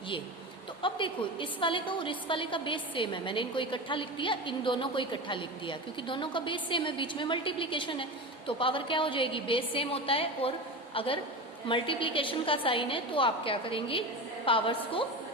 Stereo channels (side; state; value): both; normal; correlation 0.26